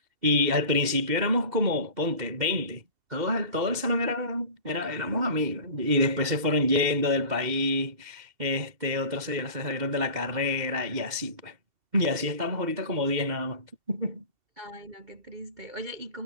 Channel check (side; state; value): left; late; 2.7 ms